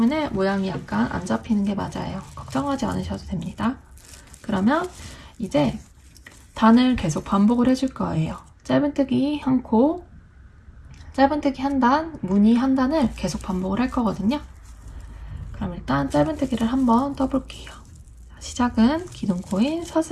모양이 약간 안 잡히는 게 맞아요. 걱정하지 않으셔도 됩니다. 그러면 이제 단을 계속 반복을 해줄 거예요. 짧은뜨기 한 코, 짧은뜨기 한 단, 무늬 한 단을 계속 반복을 할 거거든요. 그럼 일단 짧은뜨기를 한번 떠볼게요. 시작은 기둥코인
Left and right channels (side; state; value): both; identical; correlation 1.00